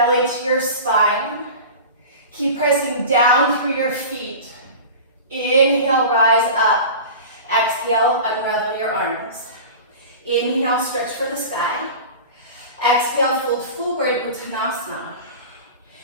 to your spine, keep pressing down through your feet. Inhale, rise up. Exhale, unravel your arms. Inhale, stretch for the sky. Exhale, fold forward, Uttanasana.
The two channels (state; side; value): inverted; both; correlation -0.34